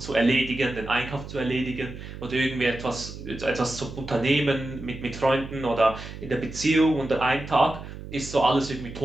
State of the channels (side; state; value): right; noise; hum, 12 dB below the sound